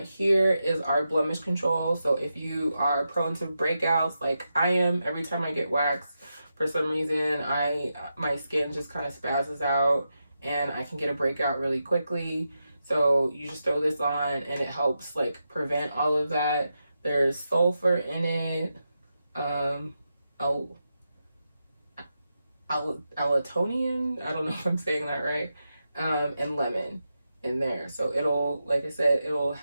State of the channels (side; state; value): both; inverted; correlation -0.88